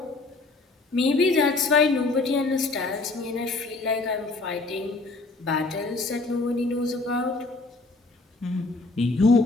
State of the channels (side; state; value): right; quieter; 3.3 dB